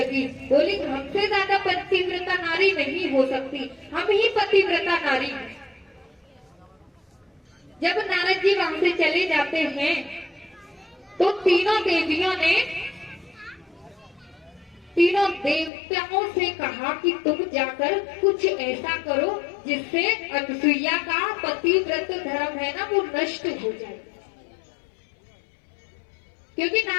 बोली हमसे ज्यादा पतिव्रता नारी नहीं हो सकती, हम ही पतिव्रता नारी हैं। जब नारद जी वहां से चले जाते हैं तो तीनों देवियों ने तीनों देवताओं से कहा कि तुम जाकर कुछ ऐसा करो जिससे अनसुईया का पतिव्रत धर्म है ना वो नष्ट हो जाए। क्योंकि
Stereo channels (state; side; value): drops out; right; at 15.7 s